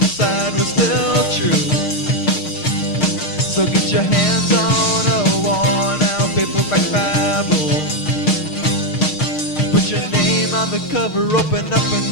were still true. So get your hands on a worn-out paperback Bible. Put your name on the cover, open up and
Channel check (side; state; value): right; late; 6.5 ms